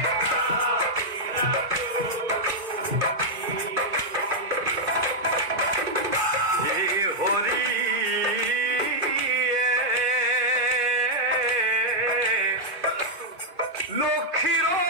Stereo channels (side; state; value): left; late; 2.5 ms